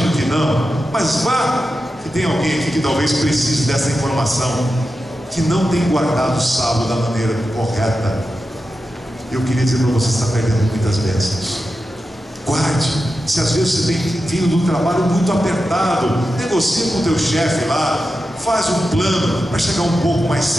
que não, mas vá que tem alguém aqui que talvez precise dessa informação, que não tem guardado o sábado da maneira correta. Eu queria dizer para você, está perdendo muitas bênçãos. Guarde. Se às vezes você tem vindo do trabalho muito apertado, negocia com o teu chefe lá, faz um plano para chegar um pouco mais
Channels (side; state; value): both; normal; correlation 0.91